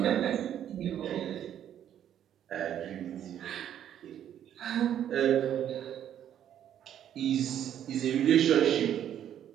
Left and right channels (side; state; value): left; quieter; 10.3 dB